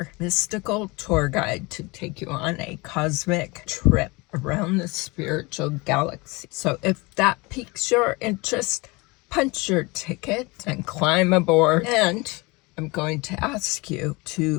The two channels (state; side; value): quieter; right; 25.2 dB